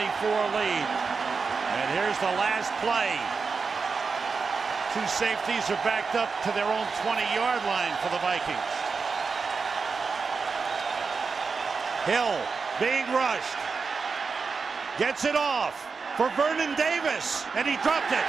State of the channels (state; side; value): quieter; left; 5.0 dB